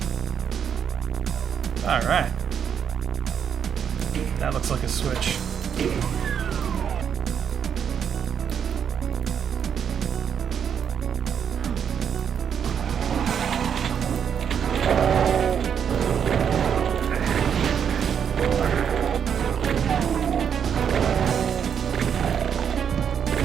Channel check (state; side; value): quieter; left; 7.8 dB